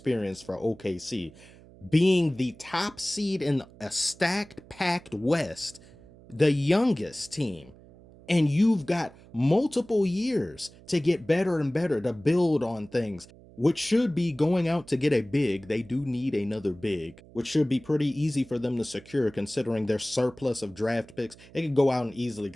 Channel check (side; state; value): right; noise; hum, 23 dB below the sound